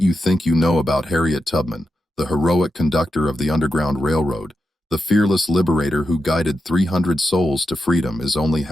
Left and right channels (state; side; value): normal; both; correlation 0.87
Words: you think you know about Harriet Tubman, the heroic conductor of the Underground Railroad, the fearless liberator who guided 300 souls to freedom, is only